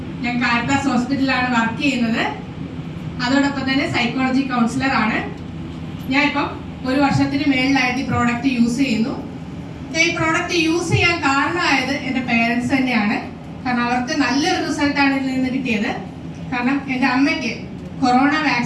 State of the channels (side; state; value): both; identical; correlation 1.00